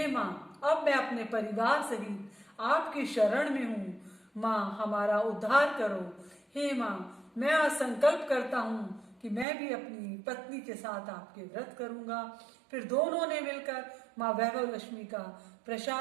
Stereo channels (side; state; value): left; drops out; at 9.5 s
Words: माँ, अब मैं अपने परिवार सहित आपकी शरण में हूँ। माँ, हमारा उद्धार करो। हे माँ, मैं आज संकल्प करता हूँ कि मैं भी अपनी पत्नी के साथ आपके व्रत करूंगा। फिर दोनों ने मिलकर माँ वैभव लक्ष्मी का